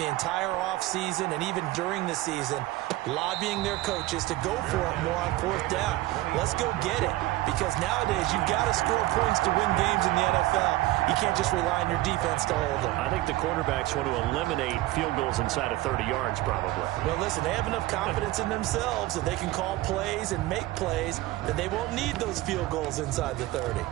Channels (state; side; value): quieter; left; 17.6 dB